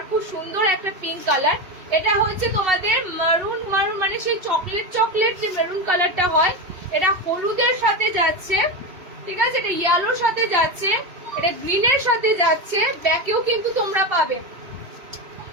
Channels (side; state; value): left; late; 2.7 ms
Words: খুব সুন্দর একটা পিঙ্ক কালার। এটা হচ্ছে তোমাদের মারুন, মারুন মানে সেই চকলেট চকলেট যে মেরুন কালারটা হয়, এটা হলুদের সাথে যাচ্ছে, ঠিক আছে, এটা ইয়েলোর সাথে যাচ্ছে, এটা গ্রিনের সাথে যাচ্ছে, ব্যাকেও কিন্তু তোমরা পাবে,